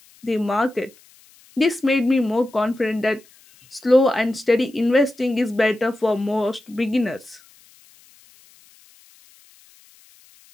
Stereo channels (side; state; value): left; noise; hiss, 28 dB below the sound